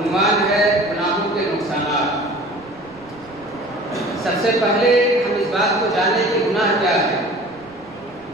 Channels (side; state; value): right; noise; rumble, 26 dB below the sound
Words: ہے گناہوں کے نقصانات۔ سب سے پہلے ہم اس بات کو جانیں کہ گناہ کیا ہے۔